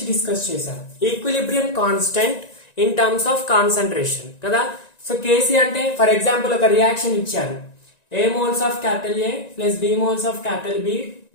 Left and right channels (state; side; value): late; right; 1.9 ms